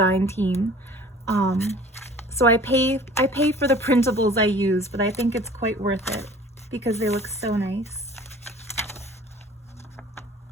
team. So I pay for the printables I use, but I think it's quite worth it because they look so nice.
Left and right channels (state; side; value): normal; both; correlation 0.47